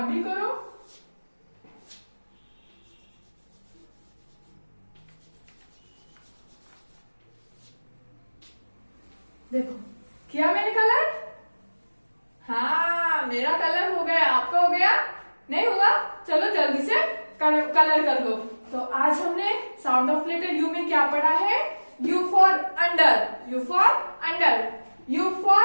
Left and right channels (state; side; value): inverted; both; correlation -1.00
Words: भी करो. देखो किया मैंने कलर, हाँ मेरा कलर हो गया, आपका हो गया नहीं हुआ, चलो जल्दी से कलर कर लो. तो आज हमने साउंड ऑफ लेटर U में क्या पढ़ा है, U for under, U for under, U